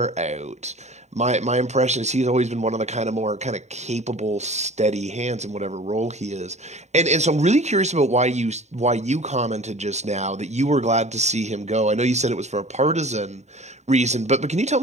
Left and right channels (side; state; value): left; late; 0.33 ms